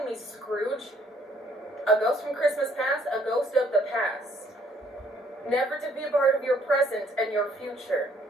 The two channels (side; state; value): both; normal; correlation 0.65